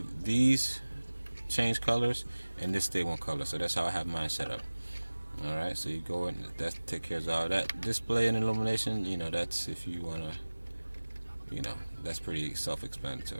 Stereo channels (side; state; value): both; inverted; correlation -1.00